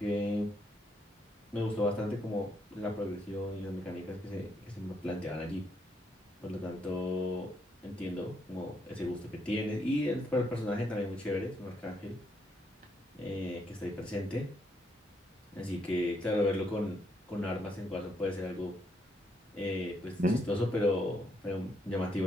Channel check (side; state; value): both; normal; correlation 0.75